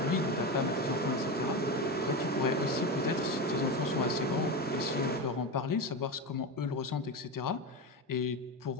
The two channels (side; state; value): both; normal; correlation 0.19